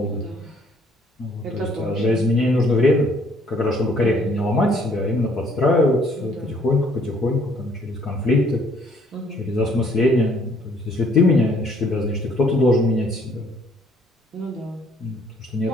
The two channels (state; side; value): normal; both; correlation 0.63